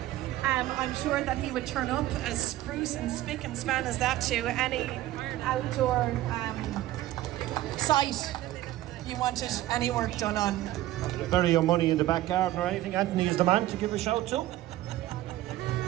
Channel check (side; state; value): left; quieter; 15.3 dB